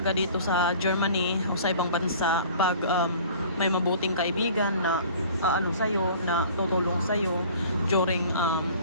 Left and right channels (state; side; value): inverted; both; correlation -0.47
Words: dito sa Germany o sa ibang bansa pag may mabuting kaibigan na sa'yo, na tutulong sa'yo